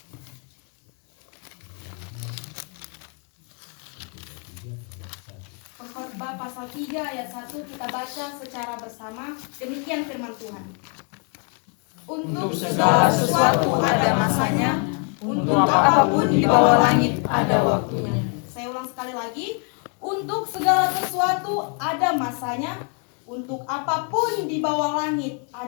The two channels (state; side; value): quieter; right; 39.7 dB